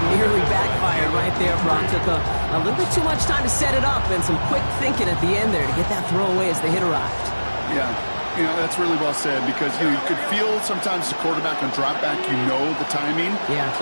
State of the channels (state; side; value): inverted; both; correlation -1.00